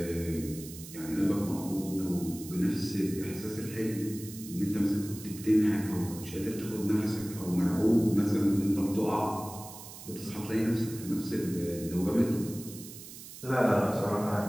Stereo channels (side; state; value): right; noise; hiss, 14 dB below the sound